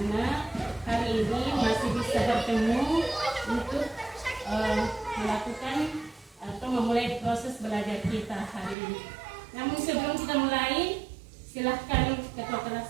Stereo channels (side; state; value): left; drops out; at 8.8 s